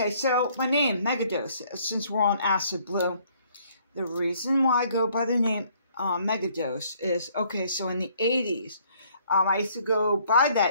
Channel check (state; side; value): inverted; both; correlation -0.63